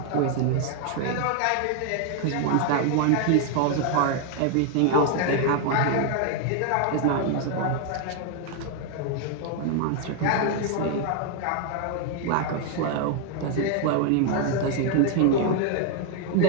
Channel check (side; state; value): both; different; correlation 0.00